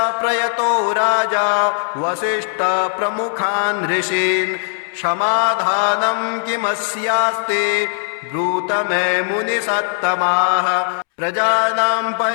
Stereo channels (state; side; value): silent; right; 67 dB below the other